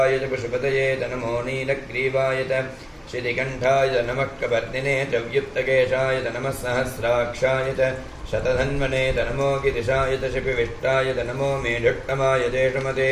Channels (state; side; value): identical; both; correlation 1.00